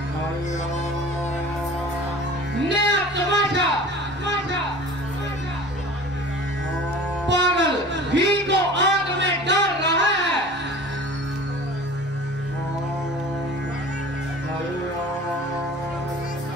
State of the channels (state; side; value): normal; both; correlation 0.41